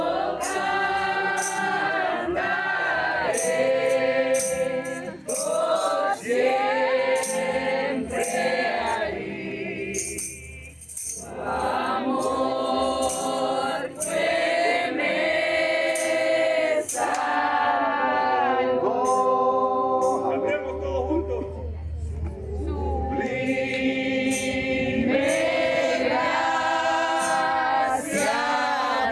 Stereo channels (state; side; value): identical; both; correlation 1.00